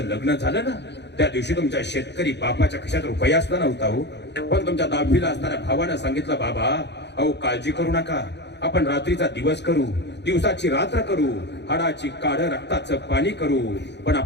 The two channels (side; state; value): right; late; 0.50 ms